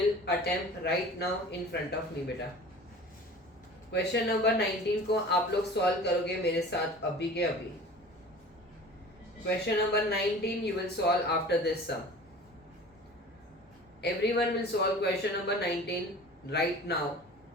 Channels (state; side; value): normal; both; correlation 0.41